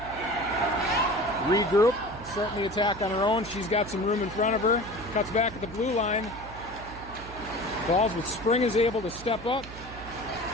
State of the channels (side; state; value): right; noise; hum, 15 dB below the sound